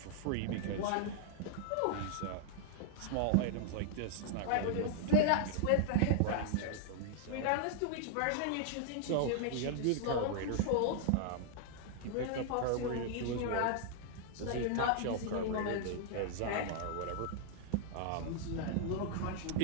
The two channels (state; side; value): different; both; correlation -0.01